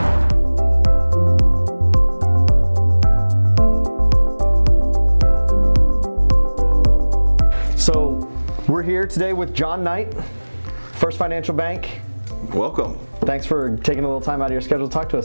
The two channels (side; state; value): both; inverted; correlation -1.00